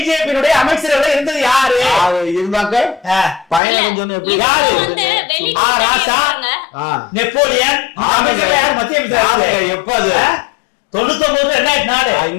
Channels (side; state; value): right; drops out; at 3.6 s